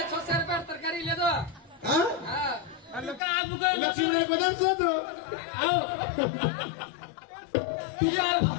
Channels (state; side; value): drops out; right; at 3.2 s